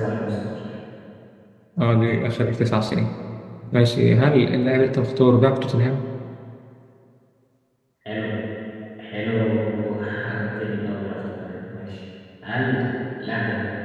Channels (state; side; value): identical; both; correlation 1.00